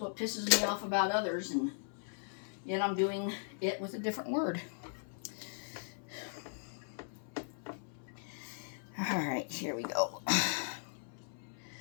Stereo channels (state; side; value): silent; right; 52 dB below the other